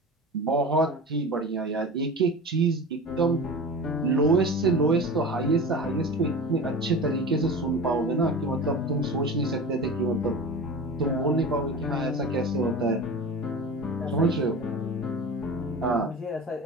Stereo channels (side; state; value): both; normal; correlation 0.33